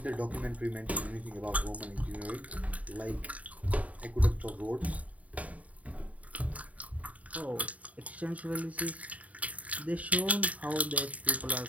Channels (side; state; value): left; late; 0.069 ms